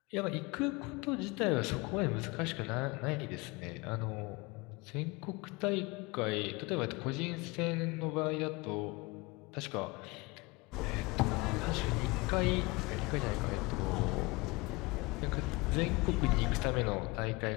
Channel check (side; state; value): right; quieter; 24.6 dB